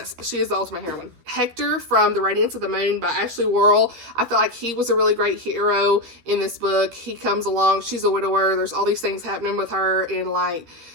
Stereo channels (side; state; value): left; late; 13 ms